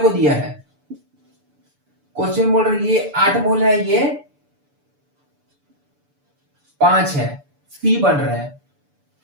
दिया है, क्वेश्चन बोल रहा है ये 8 मोल है, ये 5 है, C बन रहा है।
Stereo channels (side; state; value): left; late; 6.9 ms